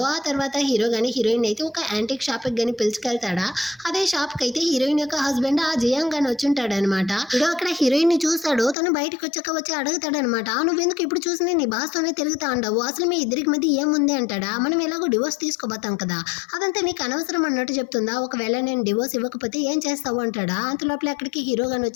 ఆ తర్వాత హీరో కానీ హీరోయిన్ అయితే ఒక యాంటిక్ షాప్కి కానీ పిలుచుకెళ్తాడా. అదే షాప్కి అయితే హీరోయిన్ యొక్క హస్బెండ్ ఆ జియాంగ్ కానీ వచ్చుంటాడు అనమాట. ఇదో అక్కడ హీరోయిన్ని చూస్తాడు. తను బయటకు వచ్చి అడుగుతాడనమాట, నువ్వెందుకు ఇప్పుడు చూసినా నీ బాస్తోనే తిరుగుతా ఉండవు, అసలు మీ ఇద్దరికి మధ్య ఏముంది అంటాడా. మనం ఎలాగో డివోర్స్ తీసుకోబోతాం కదా, అదంతా నీకు అనవసరం అన్నట్టు చెప్తుందా. ఒకవేళ నేను డివోర్స్ ఇవ్వకపోతే ఏం చేస్తావు అంటాడా. అంతలోపల అక్కడికి హీరో గాని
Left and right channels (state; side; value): drops out; right; at 8.8 s